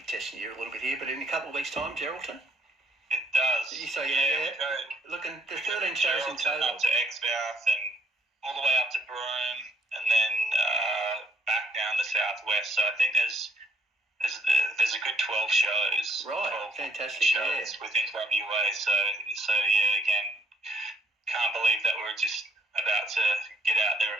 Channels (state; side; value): normal; both; correlation 0.63